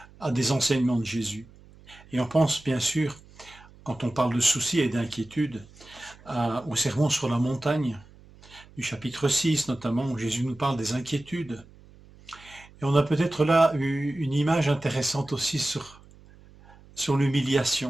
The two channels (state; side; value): noise; right; hum, 24 dB below the sound